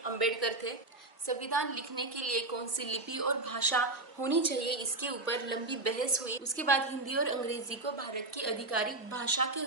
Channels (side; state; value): left; quieter; 3.0 dB